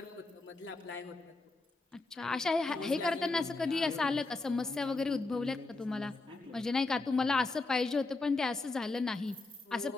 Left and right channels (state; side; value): quieter; right; 3.4 dB